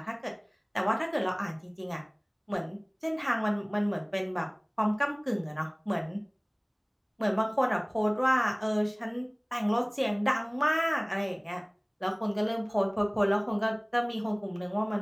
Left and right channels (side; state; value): both; identical; correlation 1.00